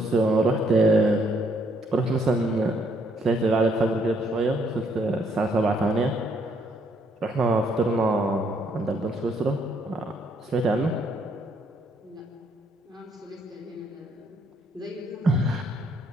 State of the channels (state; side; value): normal; both; correlation 0.69